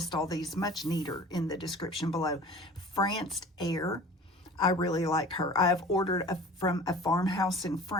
all these much neater in the description below. France Air, I really like her. I have ordered from a farmhouse in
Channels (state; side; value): normal; both; correlation 0.43